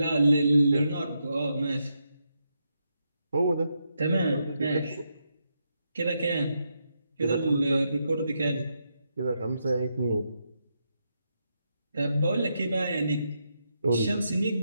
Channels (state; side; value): inverted; both; correlation -0.82